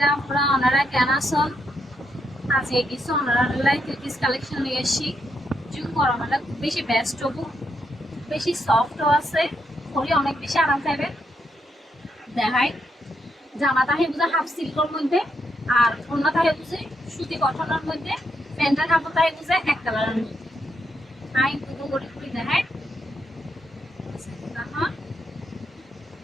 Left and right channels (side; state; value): both; normal; correlation 0.80